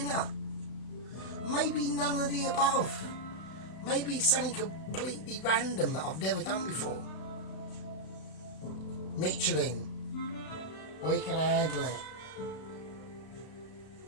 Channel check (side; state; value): right; late; 32 ms